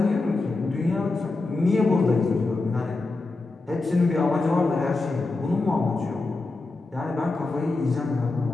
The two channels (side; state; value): right; quieter; 3.4 dB